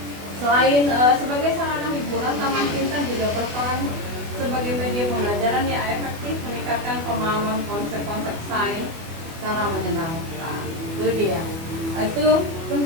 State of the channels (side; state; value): left; late; 24 ms